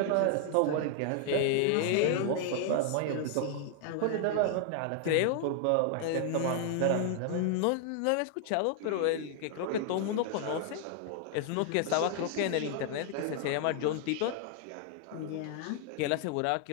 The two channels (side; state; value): both; different; correlation 0.00